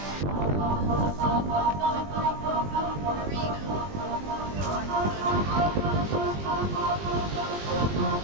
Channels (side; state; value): left; late; 20 ms